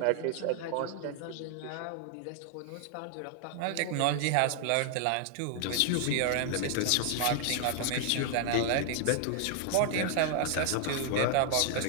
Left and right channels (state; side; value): different; both; correlation 0.00